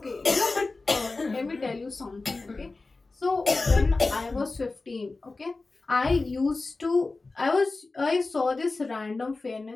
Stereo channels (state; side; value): quieter; right; 3.5 dB